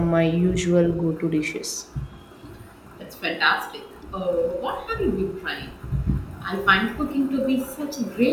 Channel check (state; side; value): identical; both; correlation 1.00